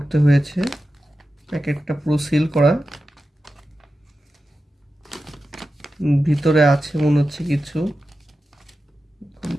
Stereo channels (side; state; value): both; normal; correlation 0.92